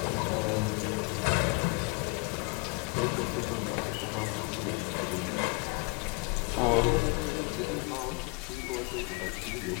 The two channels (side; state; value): right; quieter; 30.0 dB